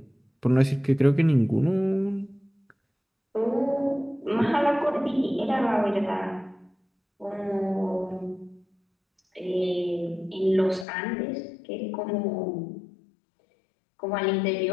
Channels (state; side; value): drops out; right; at 10.9 s